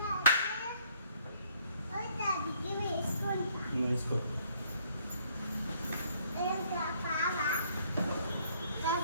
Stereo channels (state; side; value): inverted; both; correlation -0.64